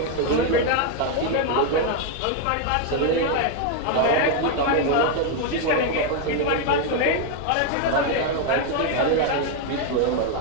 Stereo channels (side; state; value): both; different; correlation 0.01